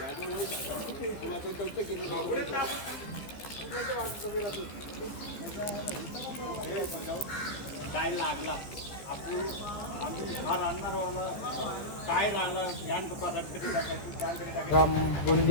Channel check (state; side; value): late; right; 14 ms